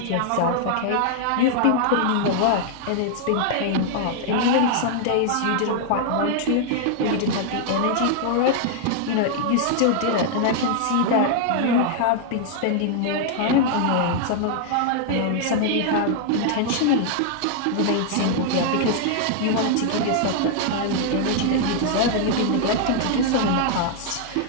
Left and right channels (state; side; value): different; both; correlation 0.00